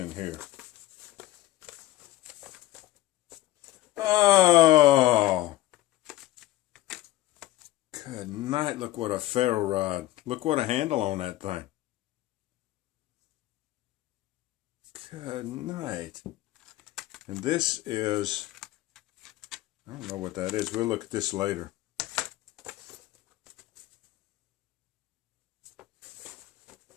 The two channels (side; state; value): right; quieter; 16.0 dB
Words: here. Oh! Good night. Look what a ferro rod. Look what a handle on that thing. Good night. And this is, I don't know what that is. We'll look at this later.